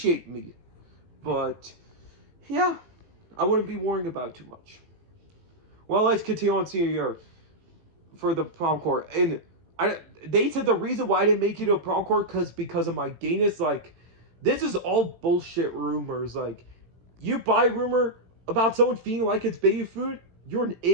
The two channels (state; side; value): late; left; 18 ms